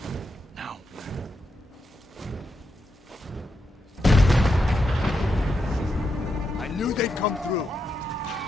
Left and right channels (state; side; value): normal; both; correlation 0.84